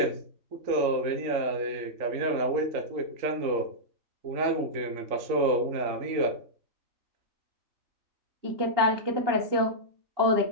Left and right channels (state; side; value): late; left; 3.8 ms